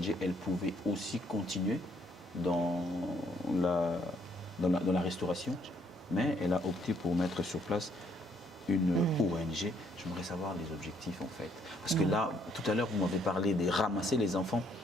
elle pouvait aussi continuer dans la restauration, mais elle a opté pour mettre sur place une ONG. J'aimerais savoir les objectifs en fait. Parce que là, tout à l'heure, vous m'avez parlé de ramasser les enfants.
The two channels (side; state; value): both; normal; correlation 0.68